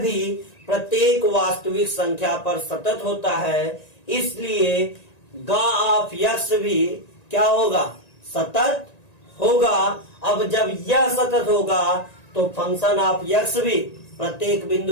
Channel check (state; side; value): late; right; 1.9 ms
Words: भी प्रत्येक वास्तविक संख्या पर सतत होता है, इसलिए गा ऑफ यक्स भी क्या होगा, सतत होगा। अब जब यह सतत होगा तो फंक्शन ऑफ यक्स भी प्रत्येक